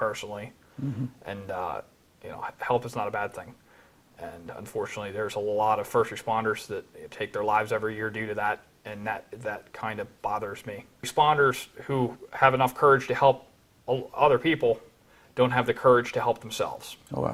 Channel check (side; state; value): both; identical; correlation 1.00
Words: Mm-hmm. And help is not a bad thing. And unfortunately, there's a lot of first responders that take their lives every year due to that, and that kind of bothers me. Responders who have enough courage to help other people don't have the courage to help themselves. Oh,